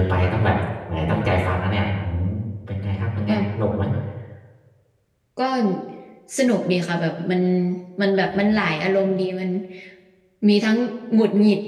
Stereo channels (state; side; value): identical; both; correlation 1.00